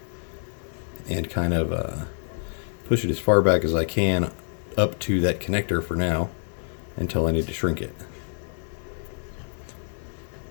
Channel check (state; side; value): silent; right; digital silence